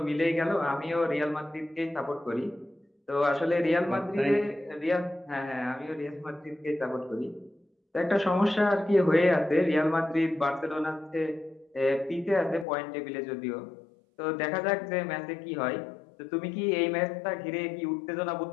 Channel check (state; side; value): drops out; right; at 12.7 s